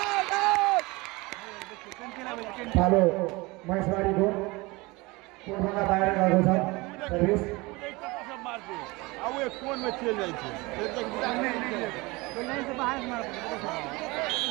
पालो महेशबारीको कोटभन्दा बाहिर गएको छ सर्भिस सब मारते अब ये कोन में चल जाई छे फिर तक लाइन से बाहर मार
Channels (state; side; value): quieter; left; 23.6 dB